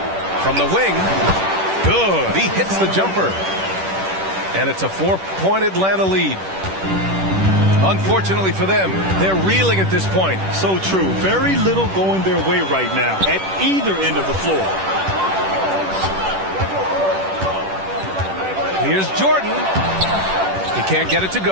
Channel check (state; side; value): late; left; 10 ms